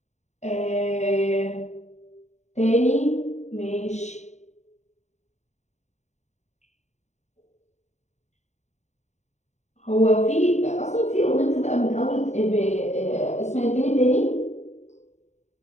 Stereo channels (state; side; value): late; right; 0.33 ms